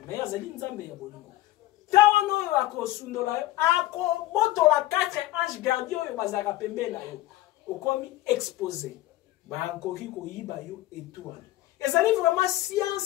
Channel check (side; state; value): right; quieter; 16.2 dB